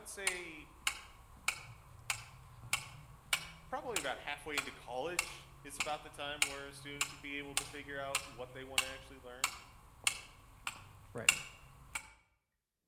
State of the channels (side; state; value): both; identical; correlation 1.00